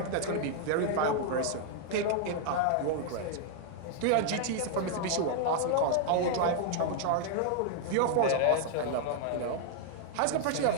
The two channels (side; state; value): both; different; correlation 0.00